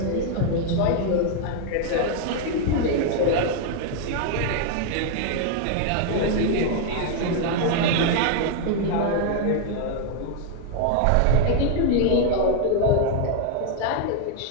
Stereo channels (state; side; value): different; both; correlation 0.00